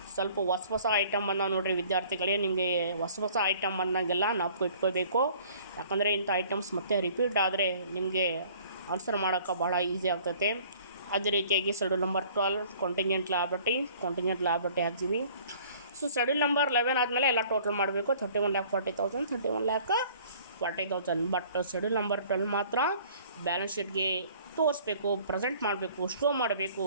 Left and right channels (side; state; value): both; inverted; correlation -0.53